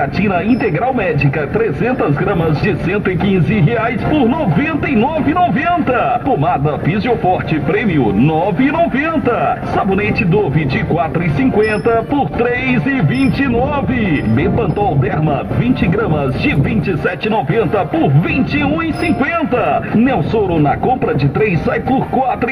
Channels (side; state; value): both; identical; correlation 1.00